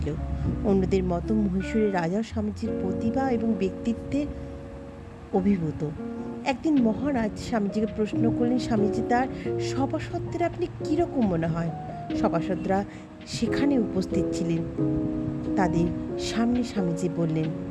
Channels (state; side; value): identical; both; correlation 1.00